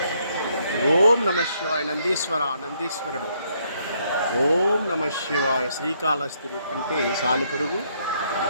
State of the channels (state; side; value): inverted; both; correlation -0.71